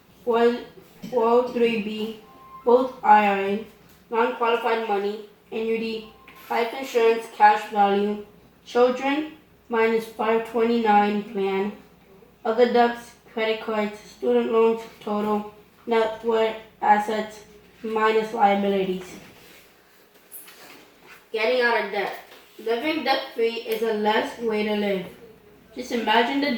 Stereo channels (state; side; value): identical; both; correlation 1.00